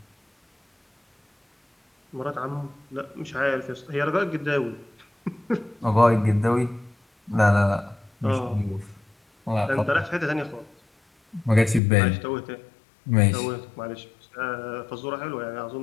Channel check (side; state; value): right; drops out; at 11.8 s